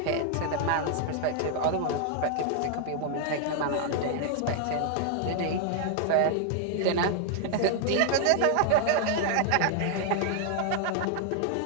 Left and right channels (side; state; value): both; different; correlation 0.00